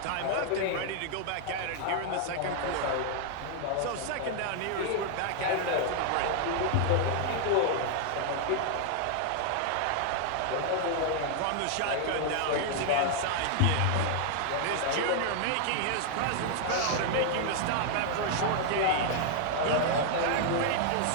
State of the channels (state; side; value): different; both; correlation 0.00